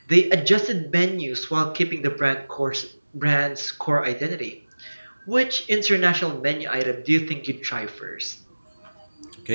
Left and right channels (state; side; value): inverted; both; correlation -1.00